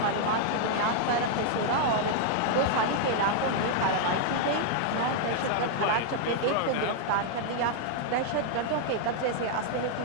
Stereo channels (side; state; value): both; different; correlation -0.01